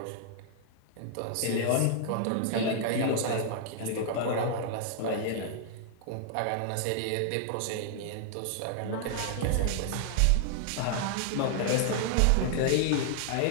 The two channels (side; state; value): both; different; correlation -0.01